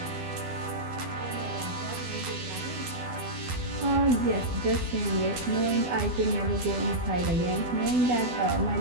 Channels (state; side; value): late; left; 12 ms